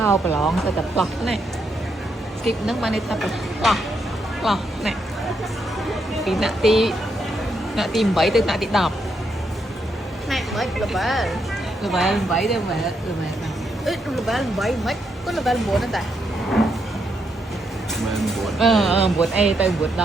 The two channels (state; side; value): normal; both; correlation 0.79